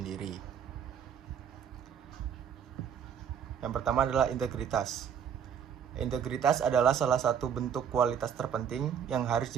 Yang pertama adalah integritas. Integritas adalah salah satu bentuk kualitas terpenting yang harus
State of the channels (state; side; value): quieter; left; 8.0 dB